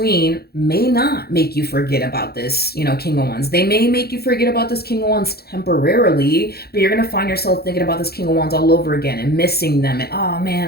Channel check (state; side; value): late; right; 0.46 ms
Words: may not make you forget about this, King of Wands. They may make you forget about this King of Wands temporarily, but you're going to find yourself thinking about this King of Wands all over again and missing them. And, oh